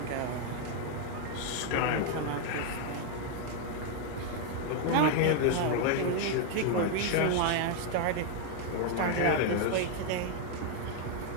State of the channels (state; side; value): different; both; correlation 0.01